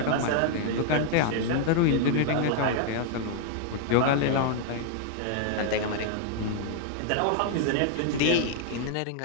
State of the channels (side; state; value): both; different; correlation 0.00